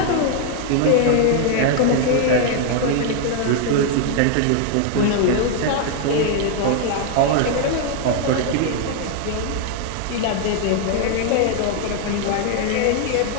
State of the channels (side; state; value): both; different; correlation 0.00